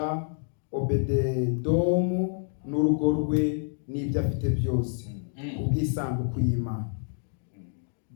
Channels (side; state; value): right; silent; digital silence